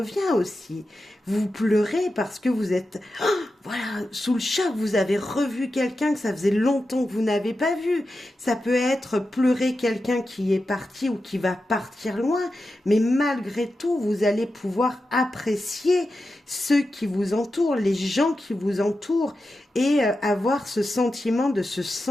aussi. Vous pleurez parce que vous êtes voilà, sous le choc, vous avez revu quelqu'un que ça faisait longtemps que vous n'avez pas vu. Ça peut être pleurer quelqu'un qui est parti ou qui va partir loin, mais malgré tout, vous allez pouvoir apprécier ceux qui vous entourent, les gens qui vous entourent, et avoir ce sentiment de se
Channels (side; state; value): both; normal; correlation 0.91